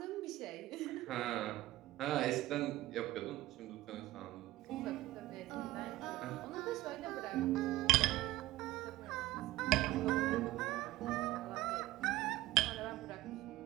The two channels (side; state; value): left; quieter; 17.0 dB